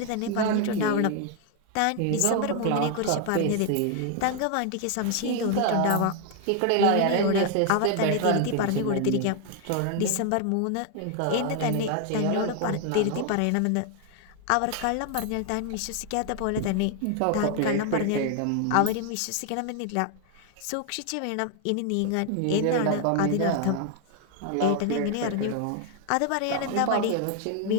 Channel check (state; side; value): different; both; correlation 0.00